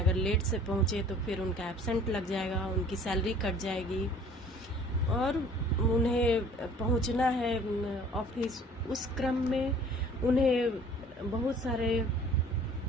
अगर लेट से पहुंचे तो फिर उनका एब्सेंट लग जाएगा, उनकी सैलरी कट जाएगी और उन्हें पहुंचना है ऑफिस। उस क्रम में उन्हें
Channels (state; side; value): normal; both; correlation 0.51